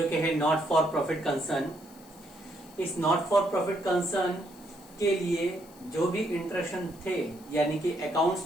कि है नॉट फॉर प्रॉफिट कंसर्न। इस नॉट फॉर प्रॉफिट कंसर्न के लिए जो भी इंस्ट्रक्शन थे यानी कि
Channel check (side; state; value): left; noise; hiss, 24 dB below the sound